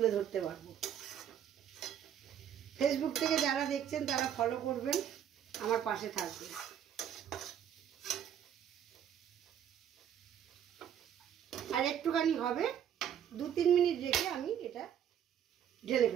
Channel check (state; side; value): quieter; left; 9.4 dB